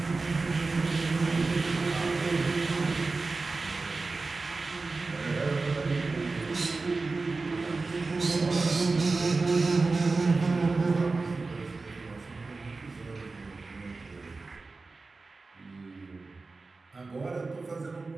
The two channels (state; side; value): quieter; left; 3.8 dB